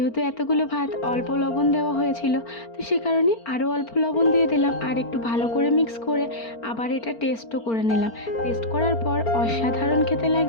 এতগুলো ভাত অল্প লবণ দেওয়া হয়েছিল, তো সে কারণে আরও অল্প লবণ দিয়ে দিলাম। আর একটু ভালো করে মিক্স করে আবার এটা টেস্টও করে নিলাম। টেস্ট করার পর অসাধারণ খেতে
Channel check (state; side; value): late; right; 4.4 ms